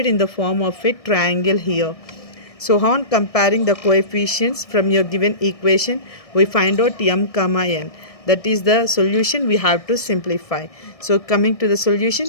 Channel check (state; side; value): late; right; 1.6 ms